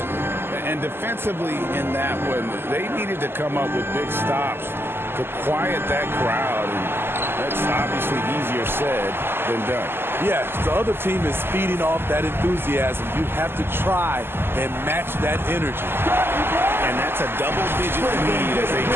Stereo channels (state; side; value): late; left; 0.11 ms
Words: And defensively in that one, they needed to come up with big stops to quiet that crowd. And that's obviously easier said than done. Yes, the other team is feeding off that enthusiasm. You have to try and match that energy. And that's a double-digit lead as they